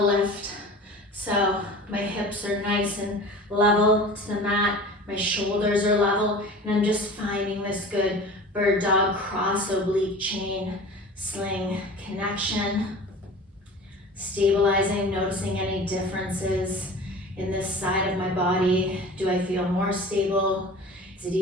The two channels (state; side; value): normal; both; correlation 0.39